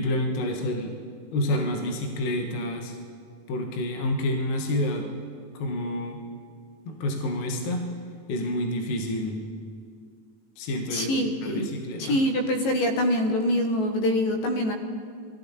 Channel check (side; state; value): right; late; 18 ms